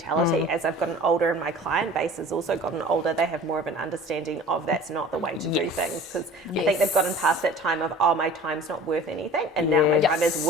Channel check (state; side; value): normal; both; correlation 0.44